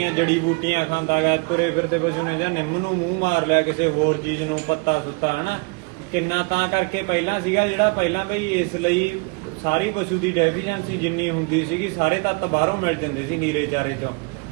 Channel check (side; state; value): left; quieter; 30.1 dB